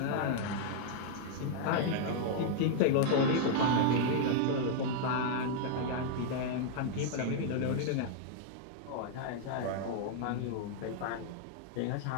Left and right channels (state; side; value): different; both; correlation 0.00